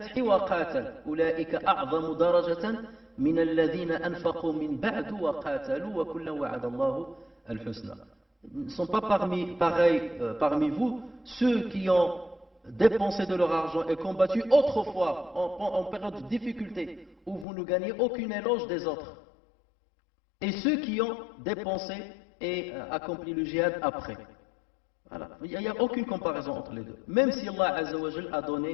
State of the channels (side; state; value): right; drops out; at 17.4 s